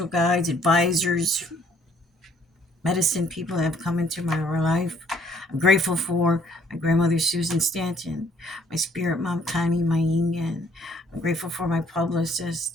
guides, advisors, medicine people that have come into my life. I'm grateful for my grandmother, Susan Stanton, my spirit mom, Connie Mayingen. I'm grateful for my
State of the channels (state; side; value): normal; both; correlation 0.62